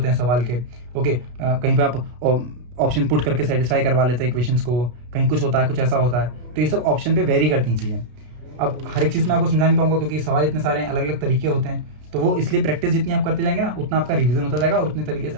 हैं सवाल के, ओके। कहीं पे आप ऑप्शन पुट करके सेटिस्फाई करवा लेते हैं इक्वेशंस को, कहीं कुछ होता है, कुछ ऐसा होता है, तो ये सब ऑप्शन पे वेरी करती हैं चीज़ें। अब हर एक चीज़ में आपको समझा नहीं पाऊंगा क्योंकि सवाल इतने सारे हैं, अलग अलग तरीके होते हैं, तो वो इसलिए प्रैक्टिस जितनी आप करते जाएंगे ना उतना आपका रिवीजन होता जाएगा और उतने तरीके से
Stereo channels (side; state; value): left; late; 33 ms